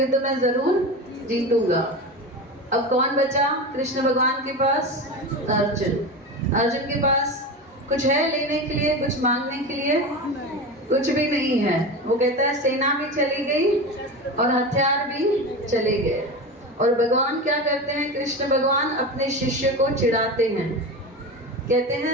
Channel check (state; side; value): normal; both; correlation 0.25